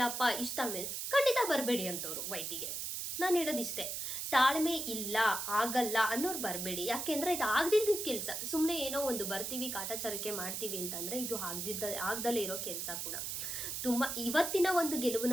ಇಷ್ಟು ತಾಳ್ಮೆ ಖಂಡಿತ ಬರಬೇಡಿ ಅಂತವ್ರು ವೈಟಿಗೆ. ನಾನು ಹೇಳೋದಿಷ್ಟೇ, ತಾಳ್ಮೆ ಇಲ್ಲ ಆಗಲ್ಲ ಅನ್ನೋರು ಬರಬೇಡಿ. ಯಾಕೆಂದರೆ ಇದು ಆಗದಿದ್ದ ಕೆಲಸ. ಸುಮ್ಮನೆ ಏನೋ ಒಂದು ಬರ್ತೀವಿ ಕಾಟಾಚಾರಕ್ಕೆ ಮಾಡ್ತೀವಿ ಅಂತಂದರೆ ಇದು ಆಗದಲ್ಲೇ ಇರೋ ಕೆಲಸ ಕೂಡ. ತುಂಬ ಇವತ್ತಿನ ಒಂದು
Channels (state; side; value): noise; right; hiss, 4 dB below the sound